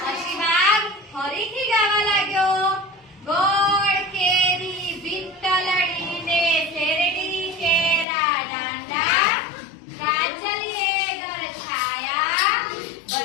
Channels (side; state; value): right; drops out; at 8.1 s